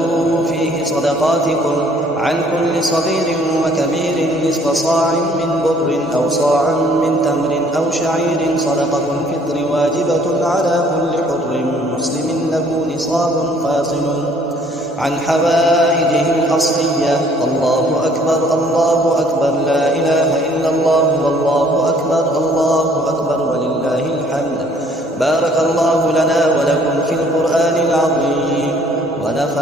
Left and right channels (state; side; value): normal; both; correlation 0.59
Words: فيه صدقاتكم عن كل صغير وكبير نصف صاع من بر أو صاعا من تمر أو شعير. صدقة الفطر واجبة على كل حر مسلم له نصاب فاصل عن حوائجه الأصلية. الله أكبر الله أكبر لا إله إلا الله والله أكبر الله أكبر ولله الحمد. بارك الله لنا ولكم في القرآن العظيم،